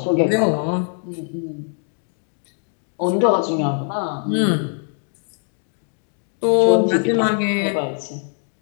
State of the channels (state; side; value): silent; right; 57 dB below the other